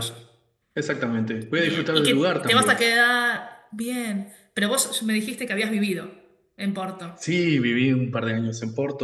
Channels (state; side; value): identical; both; correlation 1.00